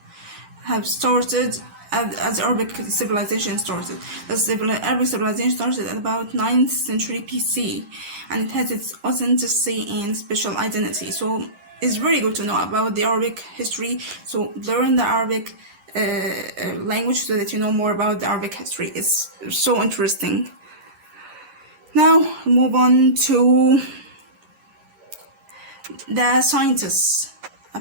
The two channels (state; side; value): late; left; 11 ms